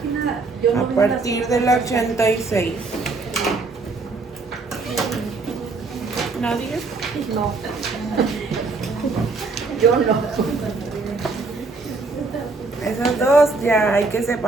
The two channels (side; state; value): left; quieter; 3.8 dB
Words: Yo no A partir de la 86. ¿Nadie? No. Yo no. Esas dos ya hay que